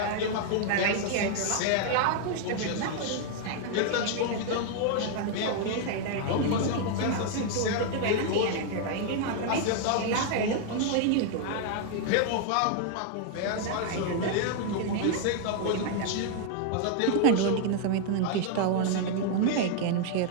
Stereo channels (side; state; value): both; different; correlation 0.00